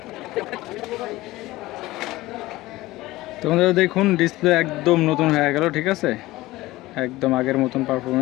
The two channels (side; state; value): right; quieter; 18.3 dB